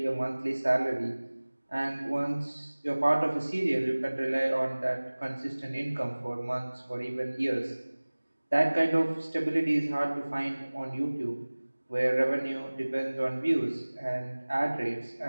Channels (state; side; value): inverted; both; correlation -1.00